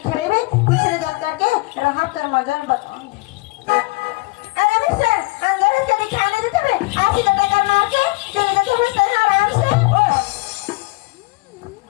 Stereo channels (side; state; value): right; quieter; 24.2 dB